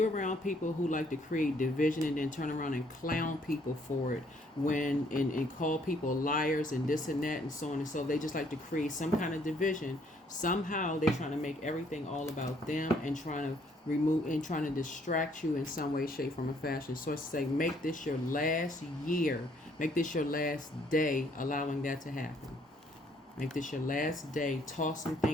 around people who like to create division and then turn around and clown people for it, and call people liars and this and that and so on and so, they just like to create some kind of division. Somehow they're trying to make everything all about them and trying to distract you in some way, shape, form, or fashion. So it's say, make this your last year, make this your last day allowing that to happen. Make this your last day. Toss some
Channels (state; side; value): normal; both; correlation 0.66